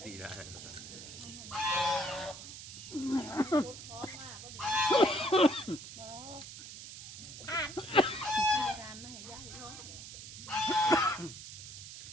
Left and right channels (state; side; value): noise; right; hiss, 12 dB below the sound